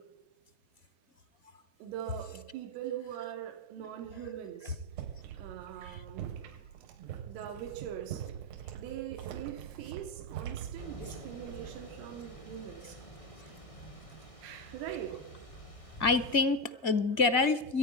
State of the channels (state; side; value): late; right; 2.1 ms